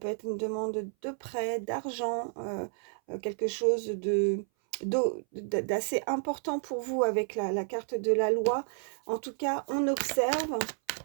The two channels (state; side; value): silent; left; 57 dB below the other